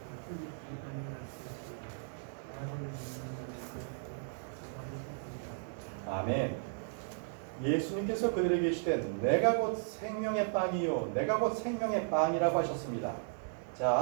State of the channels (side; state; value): left; silent; digital silence